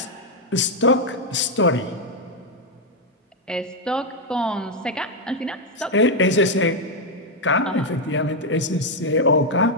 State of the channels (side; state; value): both; normal; correlation 0.02